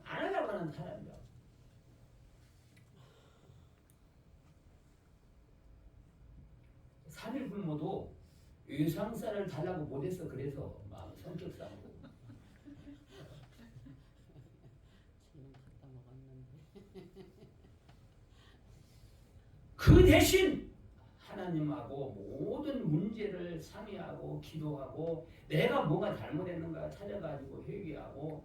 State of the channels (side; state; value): both; identical; correlation 1.00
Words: 안 하려고 하는 사람이야. 삼일 굶어도 외상쌀을 달라고 못해서 그래서 마음 성격상으로. 지금 갖다 먹었는데. 그 대신 하나님하고 모든 문제를 상의하고 기도하고 내가 뭐가 잘못했는가 찾아가지고 회개하고